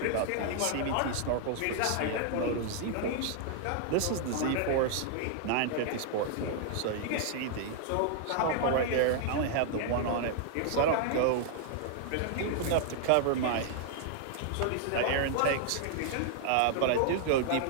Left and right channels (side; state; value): both; different; correlation 0.00